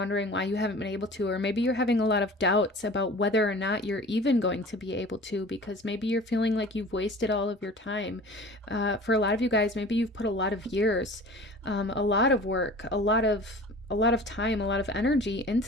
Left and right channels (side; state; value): both; normal; correlation 0.42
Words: why you haven't been able to, or maybe you're having a lot of doubts about whether or not you're even going to be able to, because maybe you're feeling like you've wasted all of your time. For a lot of you guys, maybe you've put a lot of years, a lot of work, a lot of time, a lot of energy